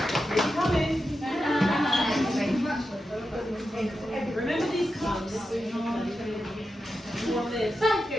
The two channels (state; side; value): normal; both; correlation 0.90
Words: Remember these cups? You want this?